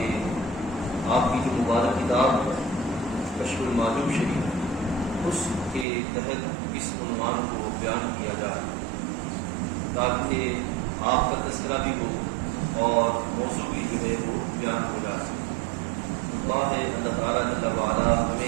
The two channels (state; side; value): drops out; left; at 5.9 s